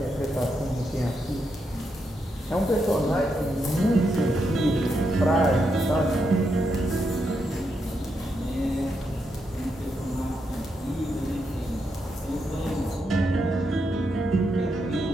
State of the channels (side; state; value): both; normal; correlation 0.82